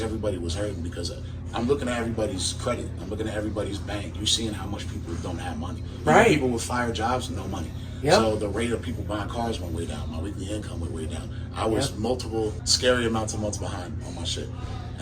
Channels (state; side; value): identical; both; correlation 1.00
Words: everybody was hurting because I'm looking at everybody's credit. I'm looking at everybody's bank. You're seeing how much people don't have money. Right. People with fire jobs, no money. Yep. So the rate of people buying cars went way down. My weekly income went way down. I was multiple scary amounts of months behind on my shit.